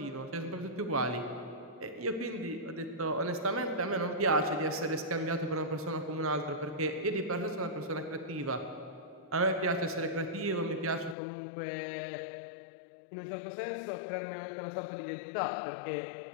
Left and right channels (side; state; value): right; drops out; at 11.2 s